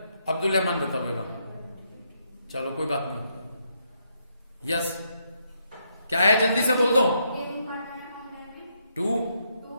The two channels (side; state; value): both; inverted; correlation -0.77